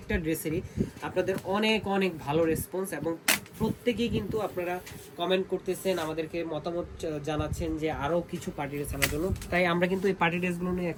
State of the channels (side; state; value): both; identical; correlation 1.00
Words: ড্রেসেরই আপনাদের অনেক অনেক ভালো রেসপন্স এবং প্রত্যেকেই কিন্তু আপনারা কমেন্ট করতেছেন, আমাদেরকে মতামত জানাচ্ছেন যে আরও কিছু পার্টি ড্রেস আনার জন্য। তাই আমরা কিন্তু এই পার্টি ড্রেসগুলো নিয়ে